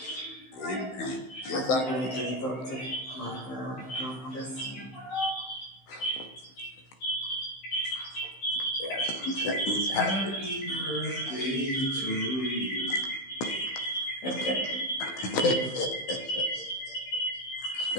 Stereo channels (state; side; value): late; right; 15 ms